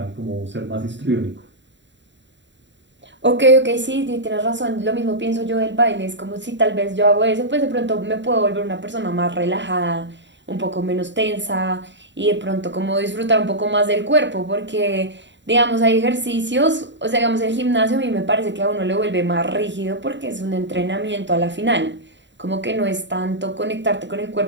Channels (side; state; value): left; late; 0.53 ms